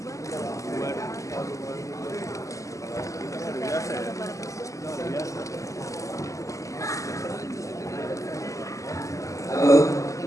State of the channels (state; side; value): late; right; 0.16 ms